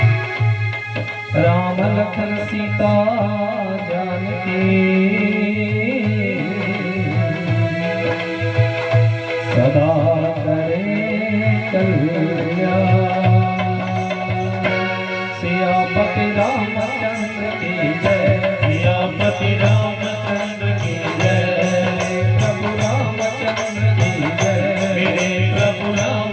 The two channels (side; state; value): both; identical; correlation 1.00